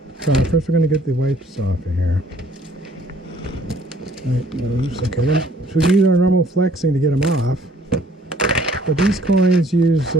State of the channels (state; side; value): normal; both; correlation 0.59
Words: So first we're going to get the wipes off of here. Right, moves. Okay, then so we use our normal flexing to get them off. But these coins use